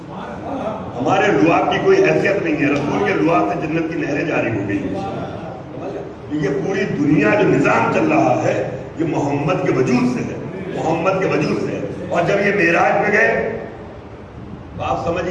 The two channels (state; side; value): identical; both; correlation 1.00